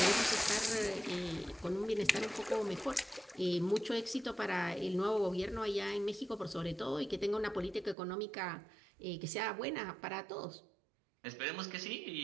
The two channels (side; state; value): left; drops out; at 8.0 s